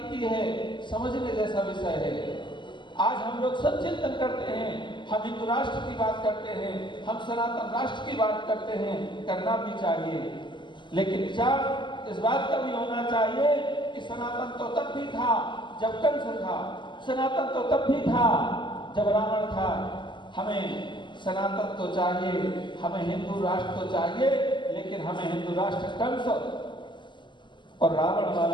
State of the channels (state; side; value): late; right; 0.23 ms